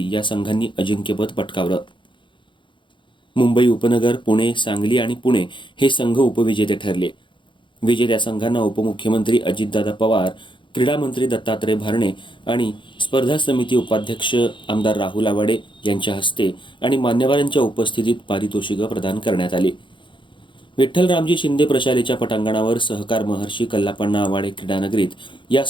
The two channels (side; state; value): right; late; 0.23 ms